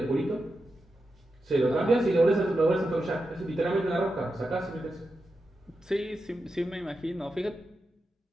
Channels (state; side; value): normal; both; correlation 0.89